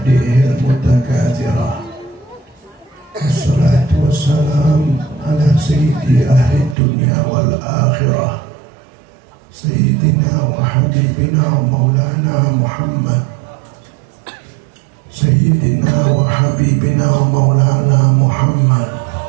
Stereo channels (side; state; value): left; drops out; at 6.8 s